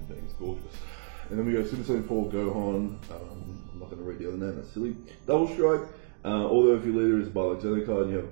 thing, it's gorgeous. And then we go Super Saiyan 4 Gohan. I'm not going to read the other name, that's silly. Double Strike. Although if your leader is a Bardock Xeno card and you have a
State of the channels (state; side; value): silent; left; digital silence